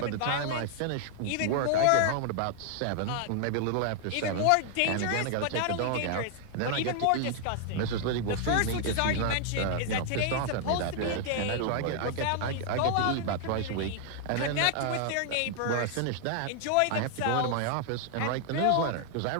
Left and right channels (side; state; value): both; different; correlation 0.00